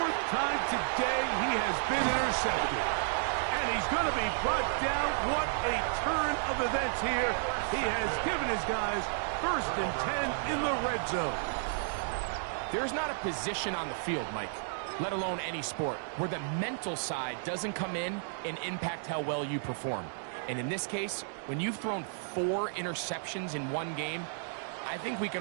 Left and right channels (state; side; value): silent; left; digital silence